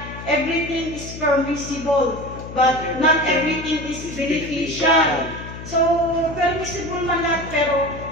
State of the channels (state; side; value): noise; left; hum, 12 dB below the sound